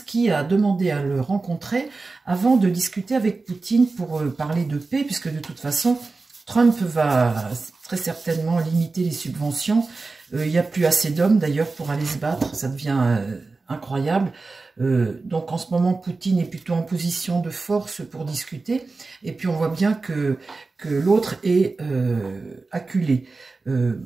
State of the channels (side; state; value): left; quieter; 3.8 dB